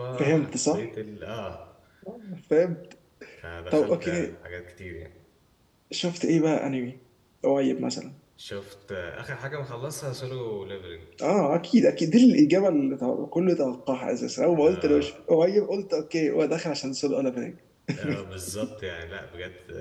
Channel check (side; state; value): both; identical; correlation 1.00